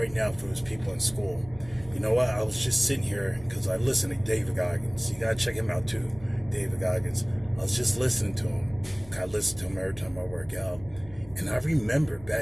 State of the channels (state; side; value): noise; right; hum, 20 dB below the sound